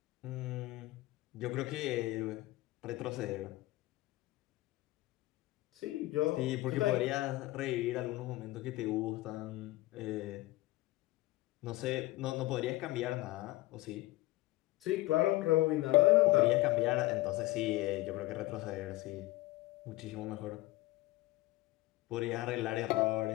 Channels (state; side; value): quieter; right; 18.7 dB